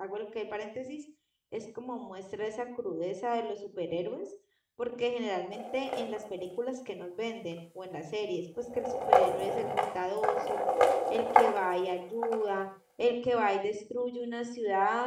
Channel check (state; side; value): identical; both; correlation 1.00